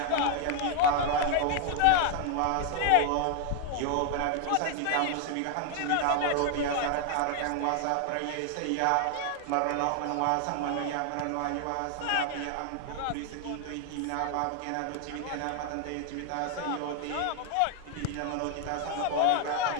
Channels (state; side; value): different; both; correlation 0.00